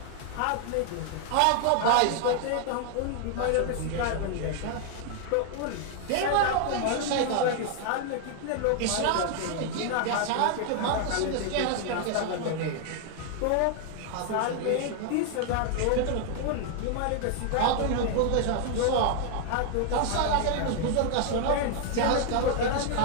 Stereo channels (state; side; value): different; both; correlation 0.00